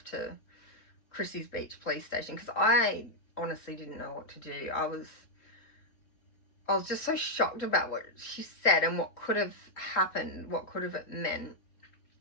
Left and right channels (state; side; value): late; right; 3.9 ms